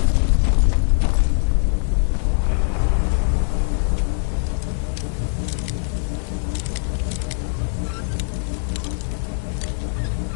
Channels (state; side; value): silent; right; 56 dB below the other